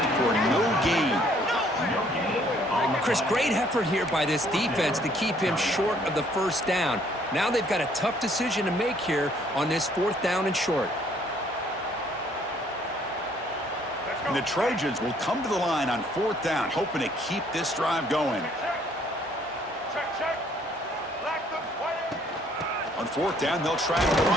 for no gain. Chris, great effort here by this defense to keep him short of the first down. Now they've got a tough decision to make here on this 4th down and short. And the Trojans will come to the line on 4th down, hoping to keep this drive going. On 4th down, they'll try to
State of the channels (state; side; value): normal; both; correlation 0.63